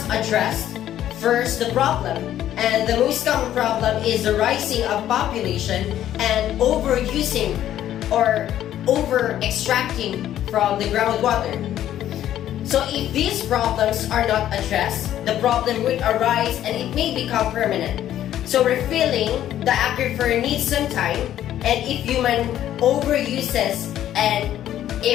address First, the problem, and the most common problem is the rising of population and overusing or over-extracting from the groundwater. So if these problems are not addressed, the problem would arise and it may become permanent. So refilling the aquifer needs some time, and if human overuses and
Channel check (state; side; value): quieter; right; 11.8 dB